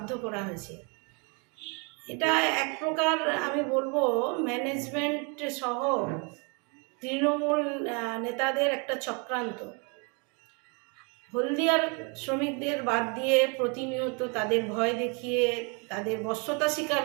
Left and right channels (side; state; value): left; quieter; 34.1 dB